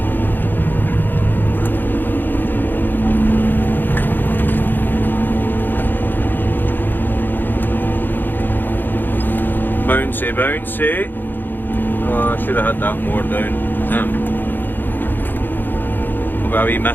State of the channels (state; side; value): late; right; 0.092 ms